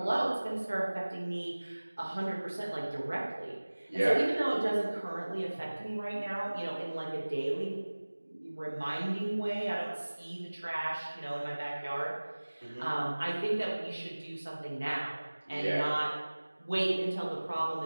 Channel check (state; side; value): inverted; both; correlation -1.00